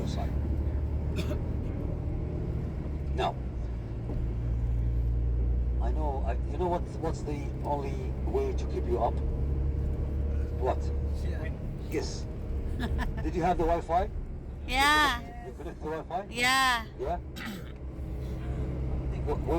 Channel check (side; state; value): both; identical; correlation 1.00